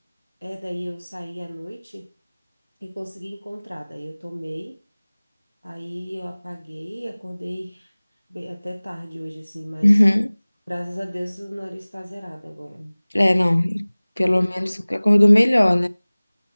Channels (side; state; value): both; inverted; correlation -1.00